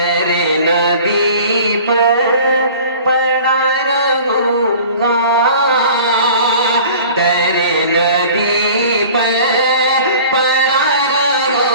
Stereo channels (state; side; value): inverted; both; correlation -0.44